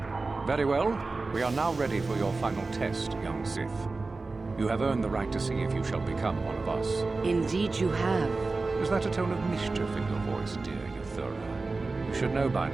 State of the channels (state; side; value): quieter; left; 3.7 dB